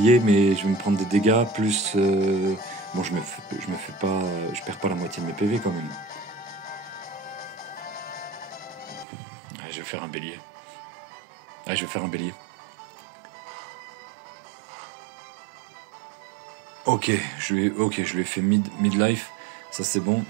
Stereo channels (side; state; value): left; drops out; at 9.1 s